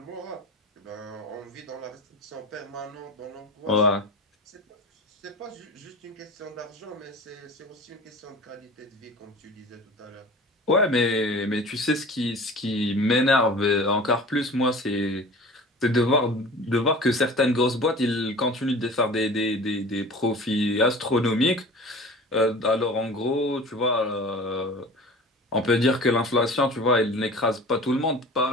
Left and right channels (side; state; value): both; normal; correlation 0.39